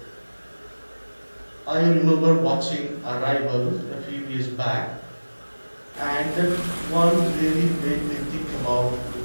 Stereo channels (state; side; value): inverted; both; correlation -1.00